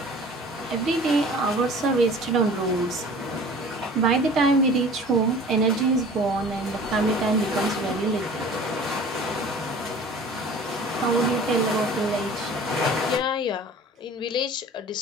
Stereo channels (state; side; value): normal; both; correlation 0.44